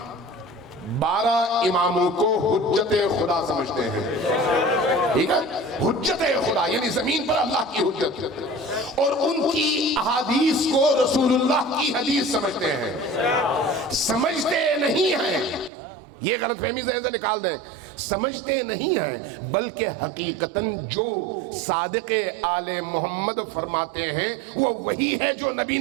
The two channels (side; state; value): left; drops out; at 15.7 s